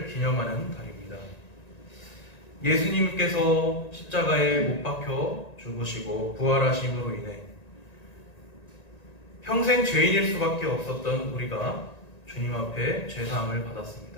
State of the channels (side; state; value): right; late; 1.9 ms